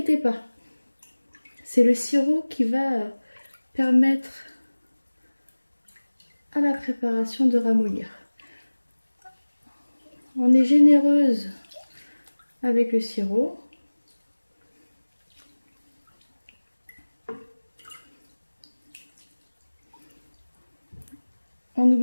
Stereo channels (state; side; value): inverted; both; correlation -1.00